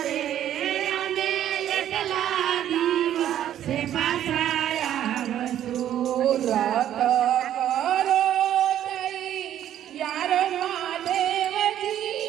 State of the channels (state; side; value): quieter; left; 11.2 dB